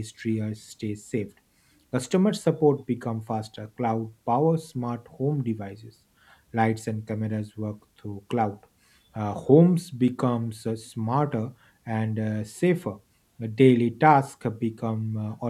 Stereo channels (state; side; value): identical; both; correlation 1.00